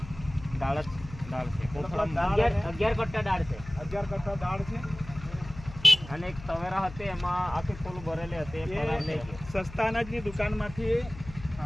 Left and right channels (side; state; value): left; noise; hum, 15 dB below the sound